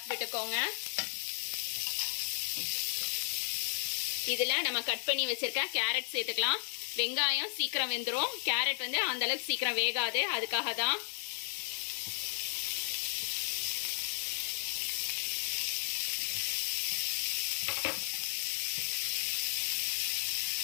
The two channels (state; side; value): silent; right; digital silence